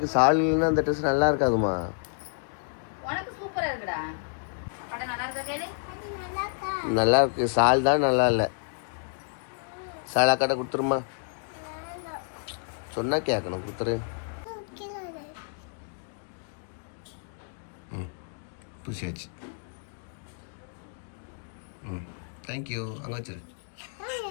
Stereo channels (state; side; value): silent; right; digital silence